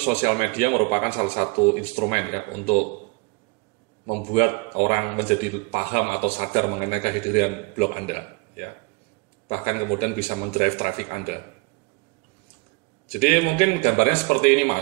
sosial media merupakan salah satu instrumen ya untuk membuat orang menjadi paham atau sadar mengenai kehadiran blog Anda ya. Bahkan kemudian bisa mendrive traffic Anda. Jadi mungkin gambarnya seperti ini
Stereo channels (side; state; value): left; quieter; 29.4 dB